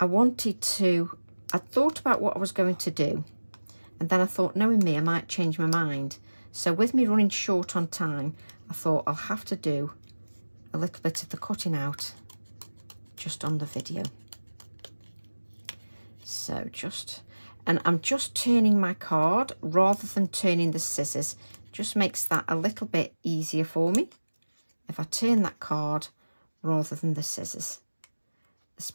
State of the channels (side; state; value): both; inverted; correlation -1.00